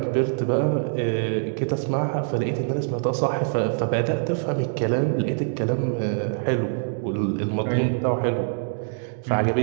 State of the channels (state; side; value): silent; left; digital silence